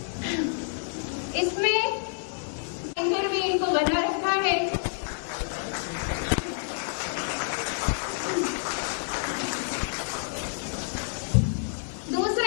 اس میں اینکر بھی ان کو بنا رکھا ہے۔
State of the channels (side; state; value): right; silent; 59 dB below the other